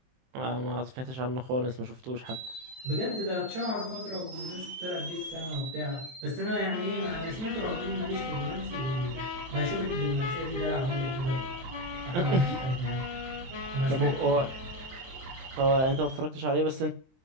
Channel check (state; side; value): late; left; 23 ms